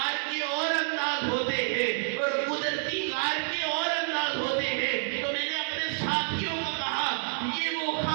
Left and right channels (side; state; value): left; silent; digital silence